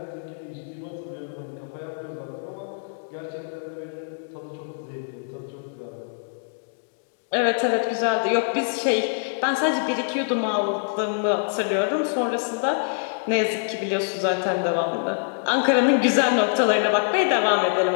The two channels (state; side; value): silent; right; digital silence